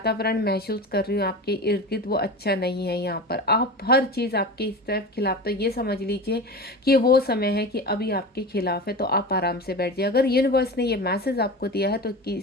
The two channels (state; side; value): normal; both; correlation 0.29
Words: महसूस कर रही हूँ आपके इर्द गिर्द, वो अच्छा नहीं है यहाँ पर। आप हर चीज़ आपके इस तरफ खिलाफ, तो ये समझ लीजिए कि वो समय है कि अभी आपके खिलाफ है, तो आप आराम से बैठ जाइए। अगर यूनिवर्स ने ये मैसेज आपको दिया है तो